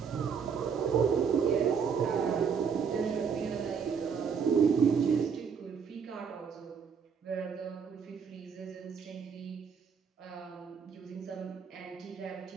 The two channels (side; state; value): left; quieter; 6.5 dB